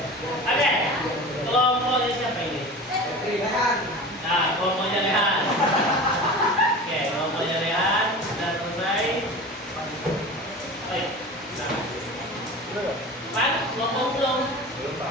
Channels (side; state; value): both; normal; correlation 0.34